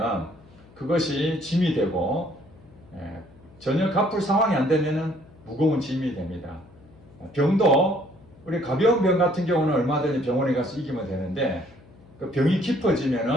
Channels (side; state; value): left; noise; hum, 25 dB below the sound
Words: 그것이 짐이 되고 전혀 갚을 상황이 안 되면 무거운 짐이 됩니다. 병도 우리 가벼운 병 같은 경우는 얼마든지 병원에 가서 이기면 되는데 그 병이